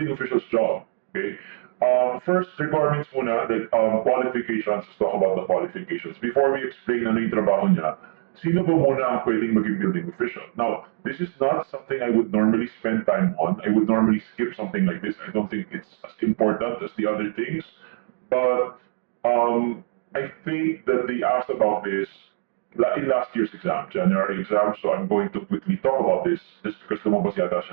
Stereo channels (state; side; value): silent; left; digital silence